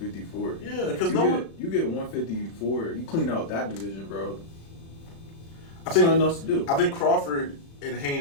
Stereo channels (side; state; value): right; late; 36 ms